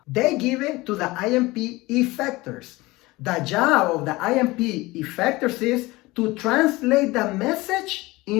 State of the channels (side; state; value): right; quieter; 21.0 dB